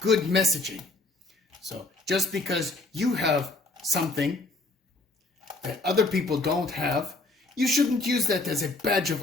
messaging. So just because you have something that other people don't have, you shouldn't use that as a badge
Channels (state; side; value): quieter; right; 3.1 dB